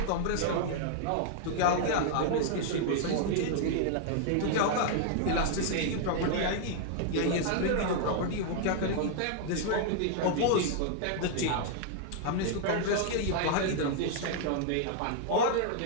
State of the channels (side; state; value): both; different; correlation -0.01